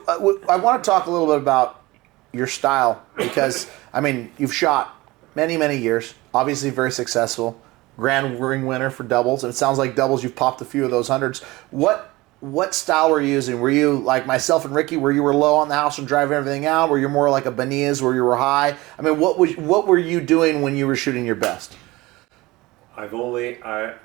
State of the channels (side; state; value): left; quieter; 20.7 dB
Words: I want to talk a little bit about your style because, I mean, you've shot many, many years, obviously very successful, grand ring winner for doubles, and it sounds like doubles you've popped a few of those hundreds. What style were you using? Were you like myself and Ricky, where you were low on the house and driving everything out? Were you more like a Benitez, where you were high? I mean, what were you doing when you were shooting your best? I